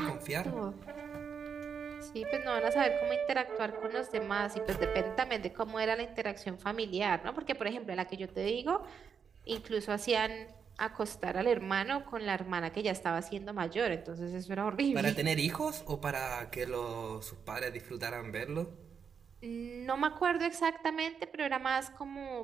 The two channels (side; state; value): left; quieter; 6.7 dB